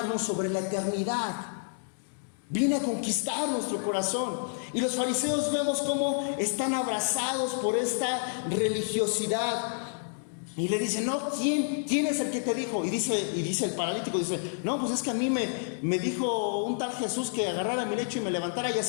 sobre la eternidad. Viene a conquistar nuestro corazón. Y los fariseos vemos cómo están abrazados por esta religiosidad. Y le dicen, no, ¿quién es el que te dijo? Y dice el paralítico, dice, no, pues es que a mí me dijo un tal Jesús que agarrara mi lecho y me levantara, y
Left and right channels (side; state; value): right; silent; digital silence